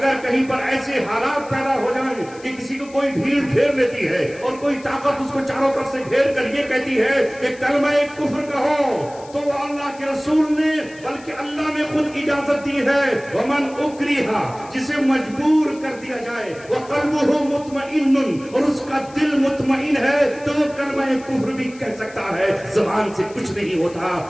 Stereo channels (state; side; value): noise; left; hiss, 23 dB below the sound